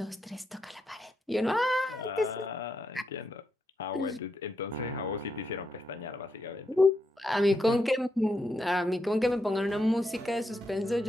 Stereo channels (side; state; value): both; normal; correlation 0.82